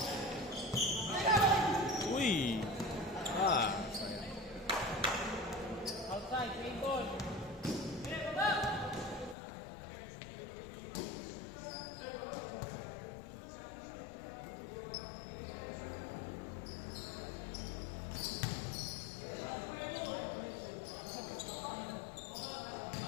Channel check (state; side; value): drops out; right; at 9.3 s